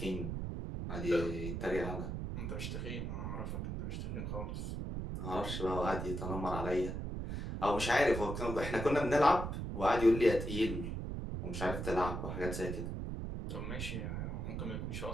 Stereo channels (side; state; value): right; noise; rumble, 4 dB below the sound